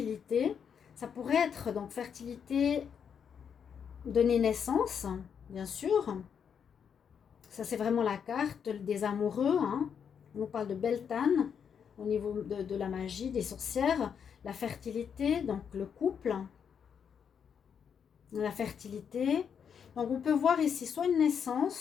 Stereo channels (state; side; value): quieter; right; 7.4 dB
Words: Ça pourrait être donc fertilité, donner naissance, bien sûr. Ça, c'est vraiment la carte des amoureux. Hein. On nous parle de Beltane au niveau de la magie, des sorcières. La fertilité, donc le couple. La fertilité. Donc, on peut voir ici soit une